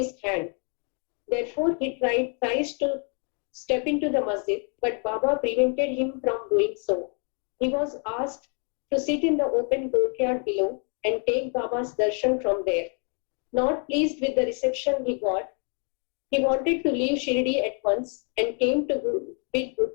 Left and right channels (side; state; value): right; quieter; 39.9 dB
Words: hand. Therefore, he tries to step into the masjid, but Baba prevented him from doing so. He was asked to sit in the open courtyard below and take Baba's darshan from there. Not pleased with the reception he got, he wanted to leave Shirdi at once and came to bid